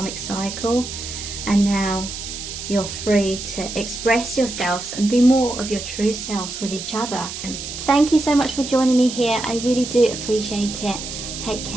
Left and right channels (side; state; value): right; noise; hiss, 8 dB below the sound